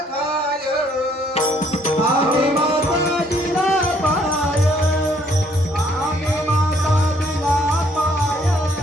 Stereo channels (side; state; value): both; normal; correlation 0.65